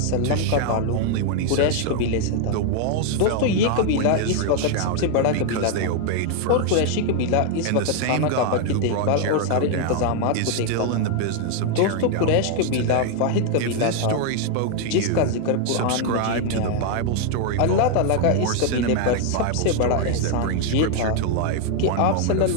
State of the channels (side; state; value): both; different; correlation 0.00